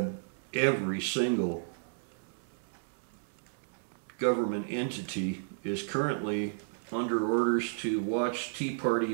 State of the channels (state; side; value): silent; left; 56 dB below the other